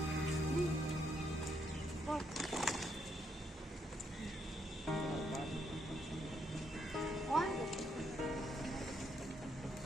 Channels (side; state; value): both; normal; correlation 0.76